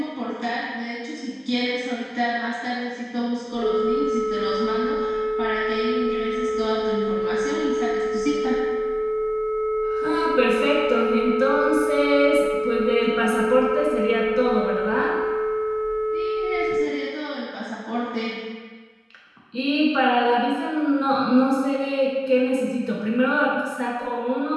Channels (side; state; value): both; identical; correlation 1.00